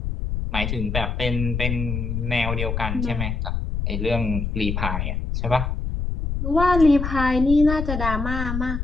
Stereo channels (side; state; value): left; noise; rumble, 2 dB below the sound